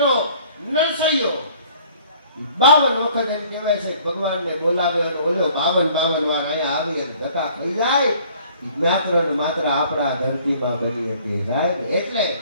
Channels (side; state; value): both; inverted; correlation -0.55